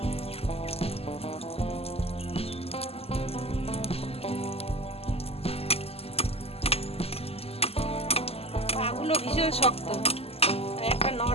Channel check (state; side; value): late; right; 0.29 ms